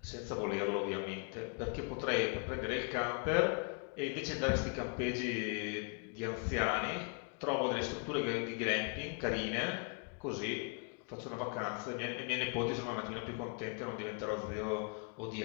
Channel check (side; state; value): right; quieter; 37.4 dB